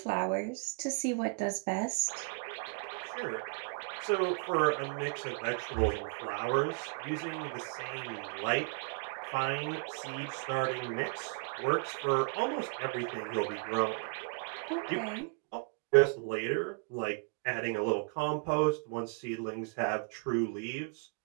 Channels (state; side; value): quieter; left; 36.2 dB